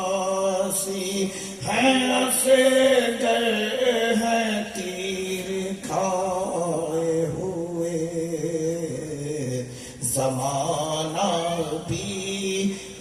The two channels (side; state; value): both; identical; correlation 1.00